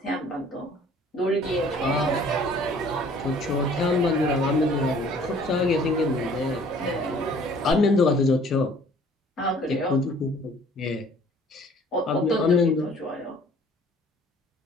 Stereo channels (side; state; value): both; normal; correlation 0.54